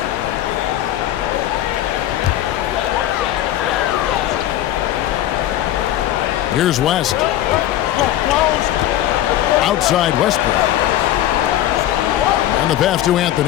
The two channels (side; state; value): right; quieter; 12.9 dB